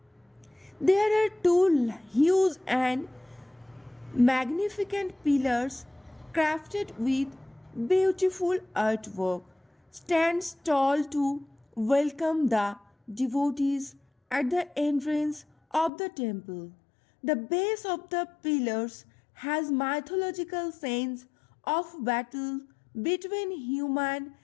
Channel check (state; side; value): drops out; right; at 15.9 s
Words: There are two huge and magnificent pillars crafted with beautiful artwork stands tall to welcome the devotees at the entrance of the temple. The base of the pillars has mythological scenes of battle between human,